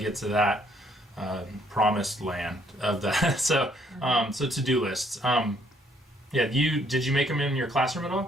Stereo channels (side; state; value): both; normal; correlation 0.67